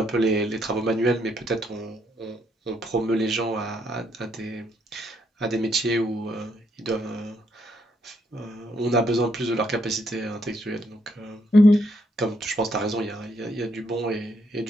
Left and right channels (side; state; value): both; normal; correlation 0.73